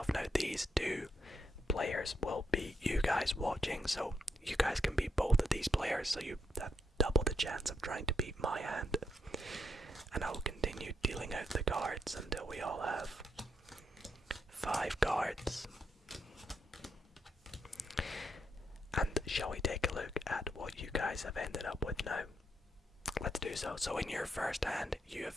Now these 2 players will be you guys watching, so you guys can be both of these players, so you have double the chance of trying to beat my hand. And I will continue dealing out the cards until we all have 5 cards. shall we take a look at what you guys have ended up with now? Let's do so. So in your first hand, you have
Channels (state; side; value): normal; both; correlation 0.79